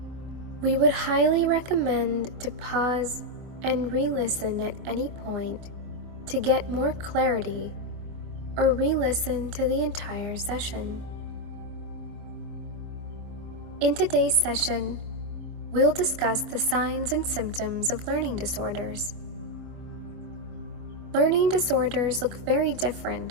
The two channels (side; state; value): left; late; 24 ms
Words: We would highly recommend to pause and re-listen at any point to get more clarity, or re-listen to the entire session. In today's session, we'll discuss the signs and symptoms of learning disorders. Learning disorders look very